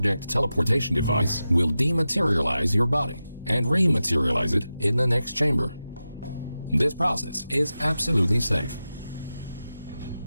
teleportation device will dematerialize your body and rematerialize it in the next chamber. This process is absolutely safe.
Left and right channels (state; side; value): inverted; both; correlation -0.92